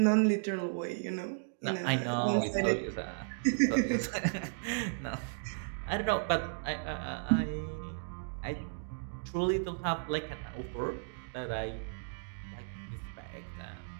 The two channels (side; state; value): left; silent; digital silence